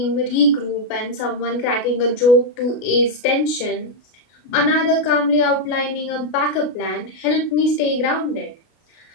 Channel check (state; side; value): late; right; 33 ms